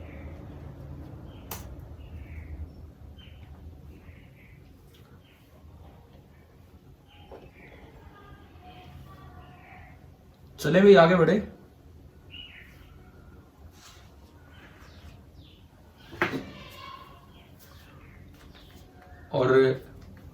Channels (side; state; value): both; identical; correlation 1.00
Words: चले भाई आगे बढ़े। और